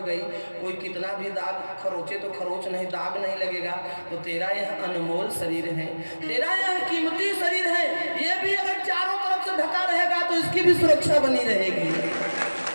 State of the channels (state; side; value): inverted; both; correlation -1.00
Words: कोई कितना भी दाग खरोचे तो खरोच नहीं, दाग नहीं लगेगा। तो तेरा यह अनमोल शरीर है, तेरा यह कीमती शरीर है, ये भी अगर चारों तरफ से ढका रहेगा तो इसकी भी सुरक्षा बनी रहेगी।